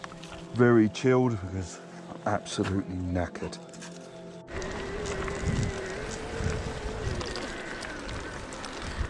Very chilled because I'm absolutely knackered.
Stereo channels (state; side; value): identical; both; correlation 1.00